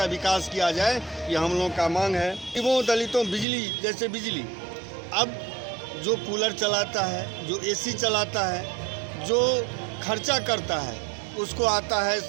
विकास किया जाए। यह हम लोग का मांग है। गरीबों दलितों बिजली, जैसे बिजली, अब जो कूलर चलाता है, जो एसी चलाता है, जो खर्चा करता है, उसको आता है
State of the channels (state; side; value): drops out; left; at 3.5 s